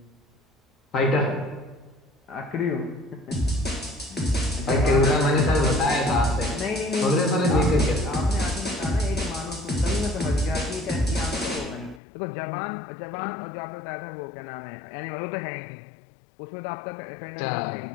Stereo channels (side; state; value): right; drops out; at 12.0 s